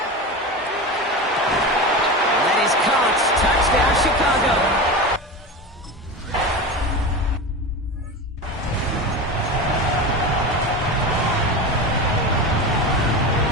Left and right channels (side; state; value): both; normal; correlation 0.25